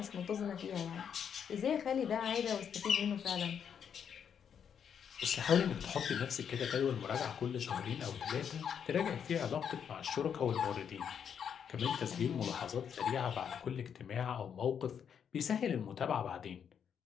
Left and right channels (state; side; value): quieter; right; 7.8 dB